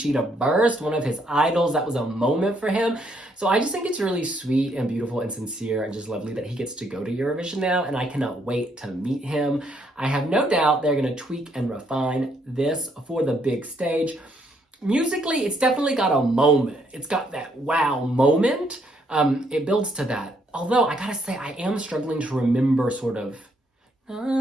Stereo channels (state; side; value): normal; both; correlation 0.72